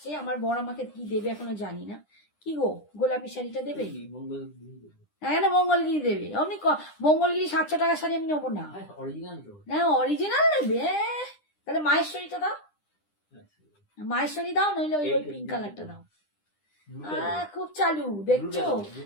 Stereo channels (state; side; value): late; right; 9.9 ms